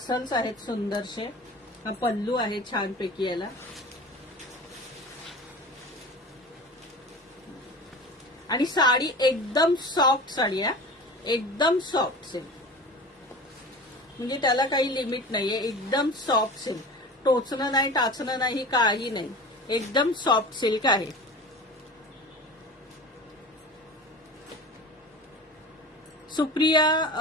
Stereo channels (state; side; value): normal; both; correlation 0.36